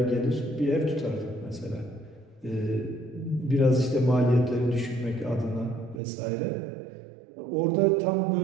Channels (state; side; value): drops out; left; at 6.0 s